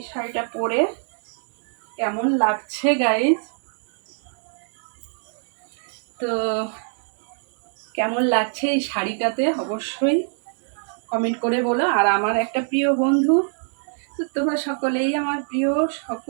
শাড়িটা পরে কেমন লাগছে গাইস? তো কেমন লাগছে এই শাড়িটাতে অবশ্যই কমেন্ট করে বলো। আর আমার একটা প্রিয় বন্ধু, তো তোমরা সকলেই আমার প্রিয়,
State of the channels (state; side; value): silent; left; 63 dB below the other